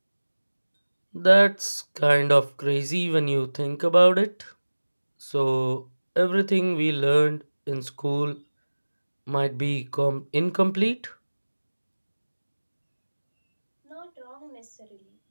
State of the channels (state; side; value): inverted; both; correlation -1.00